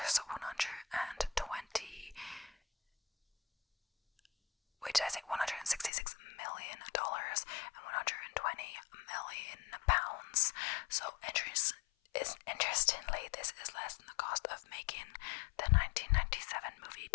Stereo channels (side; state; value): right; drops out; at 5.9 s